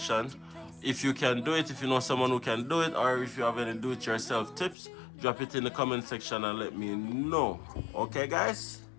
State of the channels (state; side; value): drops out; right; at 4.8 s